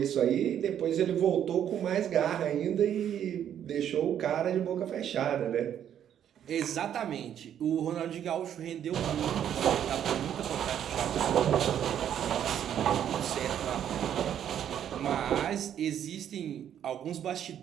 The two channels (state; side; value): quieter; left; 9.8 dB